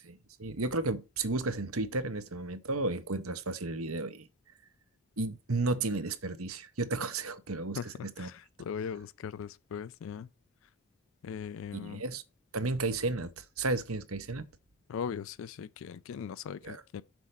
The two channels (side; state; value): both; normal; correlation 0.12